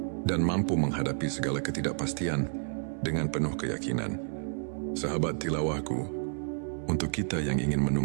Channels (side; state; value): left; silent; 58 dB below the other